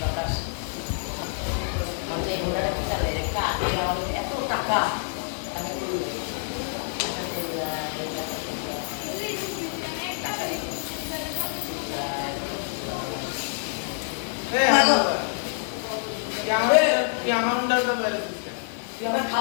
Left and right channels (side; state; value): right; silent; 60 dB below the other